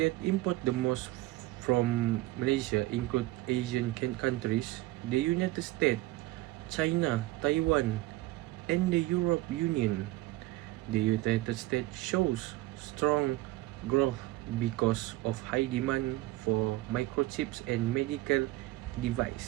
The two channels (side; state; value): left; quieter; 18.2 dB